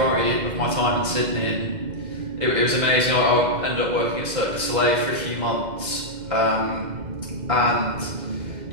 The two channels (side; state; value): left; late; 2.0 ms